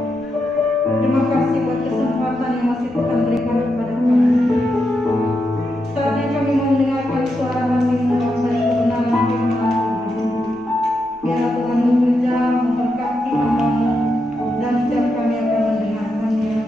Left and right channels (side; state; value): right; noise; rumble, 28 dB below the sound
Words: Terima kasih buat kesempatan yang masih Tuhan berikan kepada kami. Saatnya kami mendengarkan suara hati-Mu dari kebenaran firman Tuhan. Biar Tuhan bekerja memberkati hamba-Mu dan setiap kami akan mendengarkannya,